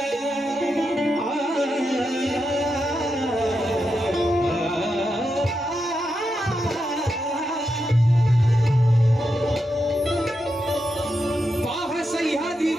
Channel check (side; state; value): both; normal; correlation 0.86